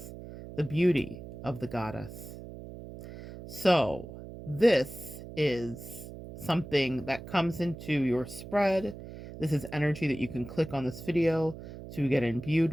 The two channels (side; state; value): right; noise; hum, 13 dB below the sound